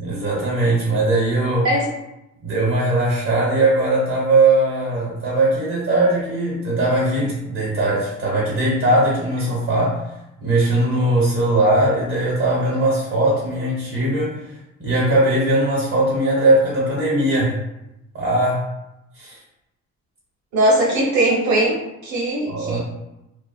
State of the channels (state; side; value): normal; both; correlation 0.07